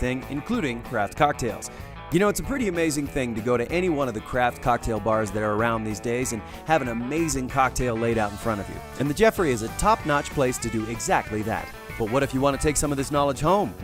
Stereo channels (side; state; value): both; identical; correlation 1.00